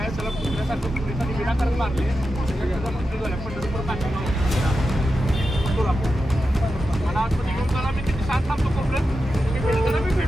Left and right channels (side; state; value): both; normal; correlation 0.90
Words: चला पुण्यासारखं पोलिसांनी विनाकारण मारले मला आतमध्ये घेऊन चला मी तिथे साथ थांबतो कोपऱ्यात मी भेटताना मी